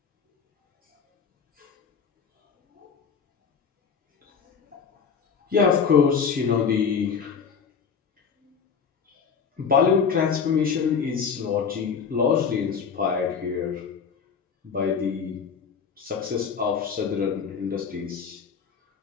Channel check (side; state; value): right; quieter; 6.3 dB